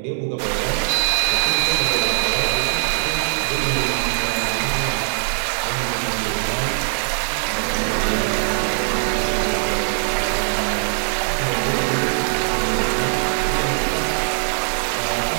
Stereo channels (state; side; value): silent; left; digital silence